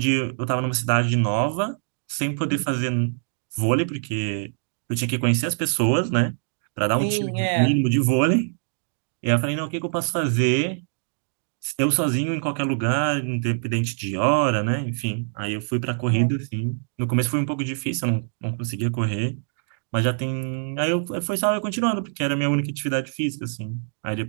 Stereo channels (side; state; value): left; silent; digital silence